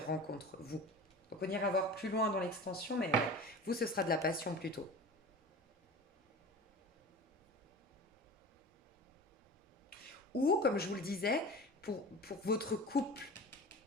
rencontres, vous. Donc on ira voir plus loin dans l'extension, mais ouais, vous, ce sera de la passion plutôt. Ou, comme je vous le disais, pour votre couple,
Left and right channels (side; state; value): both; normal; correlation 0.35